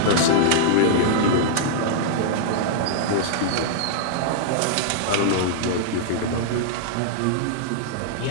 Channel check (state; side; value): different; both; correlation -0.01